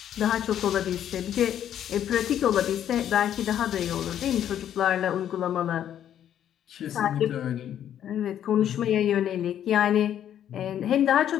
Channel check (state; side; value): quieter; right; 10.3 dB